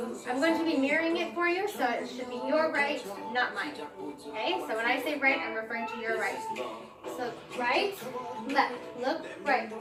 going to be mirroring it for you, so it should be your right, not mine. Okay, so when I say right, I'm referring to your right. So right, left, look, right.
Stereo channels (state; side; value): identical; both; correlation 1.00